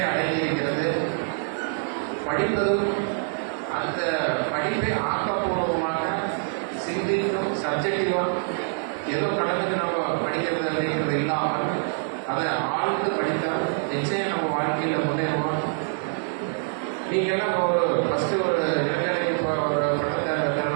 அடைந்திருக்கிறது. படிப்பதும் அந்த படிப்பை ஆக்கப்பூர்வமாக சிந்திக்கும் சப்ஜெக்டிவாக ஏதோ கடனுக்கு நம்ம படிக்கிறது அப்படிங்கிறது இல்லாமல் அதை ஆழ்ந்து படித்தால் நிச்சயம் நம்ம வாழ்க்கையில் முன்னேறுவோம். நீங்கள்லாம் ஒரு ஃபஸ்ட்டு ஒரு இளைஞரை இப்போ ஒரு பட்டத்தை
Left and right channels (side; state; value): left; silent; 62 dB below the other